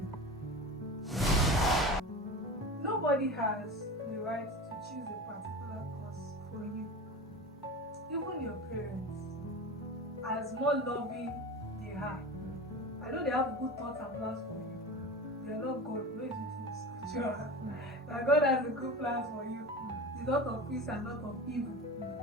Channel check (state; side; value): normal; both; correlation 0.31